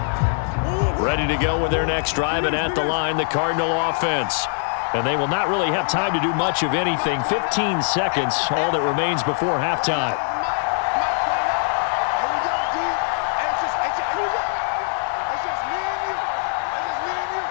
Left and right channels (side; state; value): right; silent; 64 dB below the other